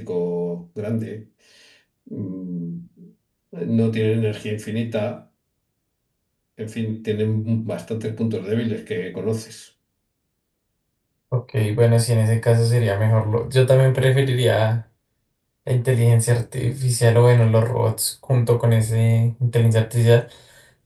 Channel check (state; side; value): identical; both; correlation 1.00